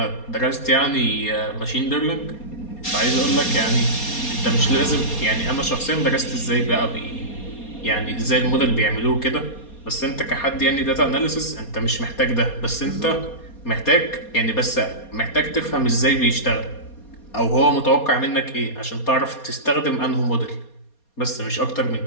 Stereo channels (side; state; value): right; late; 4.2 ms